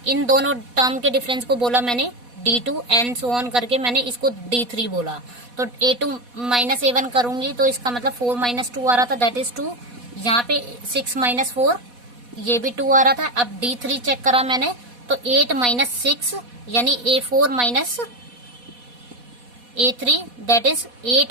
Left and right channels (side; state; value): left; late; 4.1 ms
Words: इन दोनों टर्म के डिफरेंस को बोला मैंने D2 एंड सो ऑन करके मैंने इसको D3 बोला। तो A2 माइनस A1 करूंगी तो इसका मतलब 4 माइनस 2 आ रहा था, दैट इज 2। यहाँ पे 6 माइनस 4, ये भी 2 आ रहा था। अब D3 चेक करा मैंने तो 8 माइनस 6 यानी A4 minus A3 that is